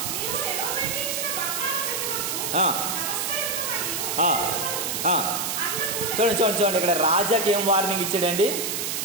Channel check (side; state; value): right; noise; hiss, 1 dB below the sound